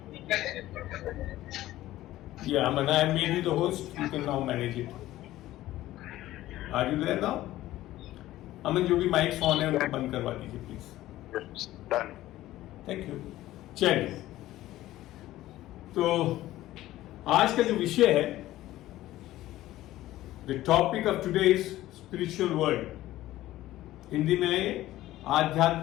Yeah, Aman, I have made you the host. You can now manage it. Are you there now? अमन जो भी mics on है उनको बंद करवा दीजिए please. Done. Thank you. चलिए, तो आज का जो विषय है, the topic of today is spiritual world. Hindi में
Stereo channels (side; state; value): right; quieter; 15.3 dB